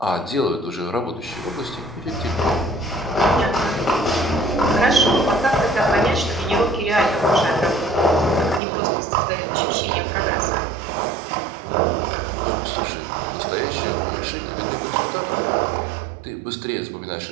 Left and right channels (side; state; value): left; drops out; at 8.6 s